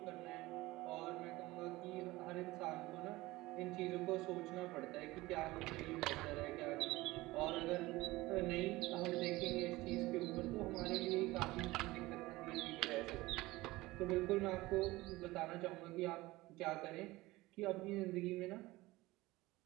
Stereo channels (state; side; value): quieter; left; 19.6 dB